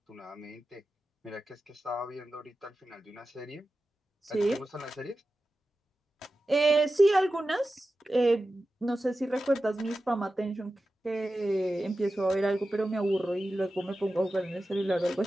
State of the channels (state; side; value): normal; both; correlation 0.93